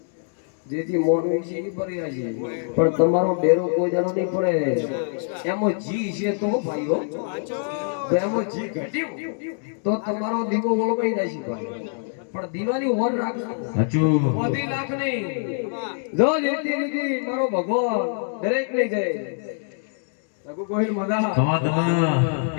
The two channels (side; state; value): right; silent; 62 dB below the other